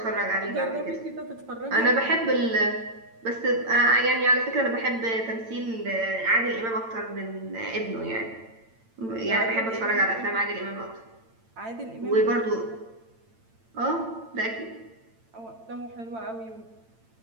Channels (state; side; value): late; left; 8.9 ms